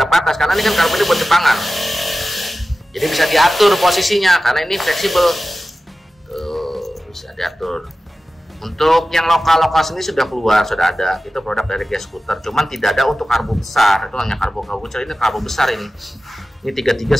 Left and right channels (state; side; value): normal; both; correlation 0.95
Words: patas, karena ini kan karbu ini buat Jepangan. Jadi bisa diatur posisinya karena ini fleksibel. Tuh, bisa diatur. Untuk yang lokal sini sudah keluar, sudah ada. Itu produk dari Gas Scooter. Cuman tidak ada untuk karbo besar. Itu hanya karbo kecil. Ini karbo besar ini. Ini 33